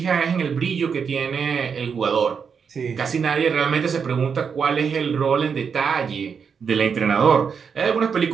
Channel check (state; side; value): quieter; left; 6.4 dB